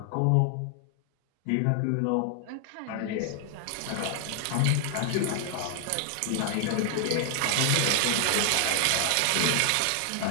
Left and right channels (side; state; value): both; different; correlation 0.00